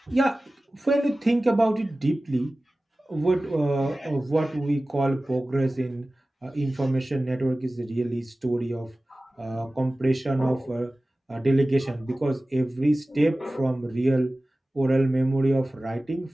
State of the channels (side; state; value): both; normal; correlation 0.97